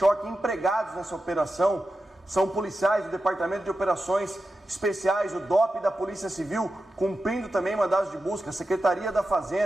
empregados nessa operação. São policiais do Departamento de Operações Especiais, o DOP da Polícia Civil, cumprindo também mandados de busca, a Secretaria da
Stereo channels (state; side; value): normal; both; correlation 0.91